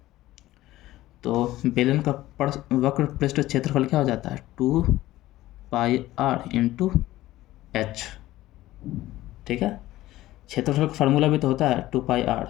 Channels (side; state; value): right; quieter; 16.0 dB